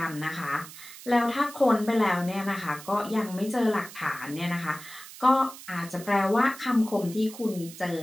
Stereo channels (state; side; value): noise; right; hiss, 16 dB below the sound